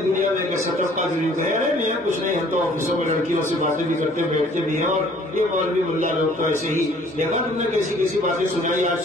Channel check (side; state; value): both; normal; correlation 0.56